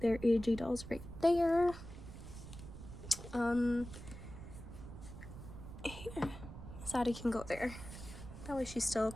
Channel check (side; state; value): right; noise; rumble, 12 dB below the sound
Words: AG dolls right there. Here, so Addie can go there. That way she's still